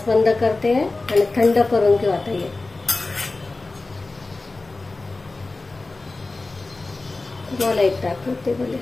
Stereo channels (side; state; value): right; quieter; 3.3 dB